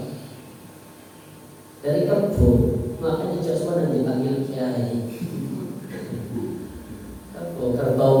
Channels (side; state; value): both; identical; correlation 1.00